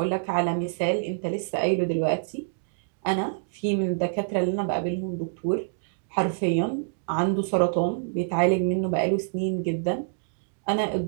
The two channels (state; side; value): silent; left; digital silence